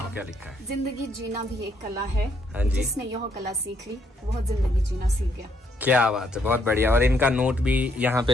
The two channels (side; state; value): both; normal; correlation 0.72